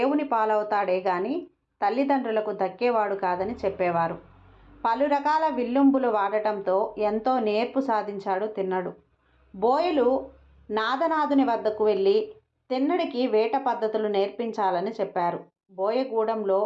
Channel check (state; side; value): identical; both; correlation 1.00